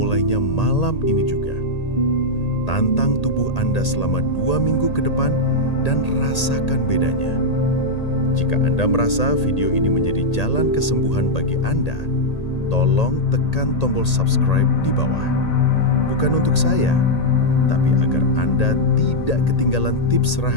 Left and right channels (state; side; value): late; right; 1.8 ms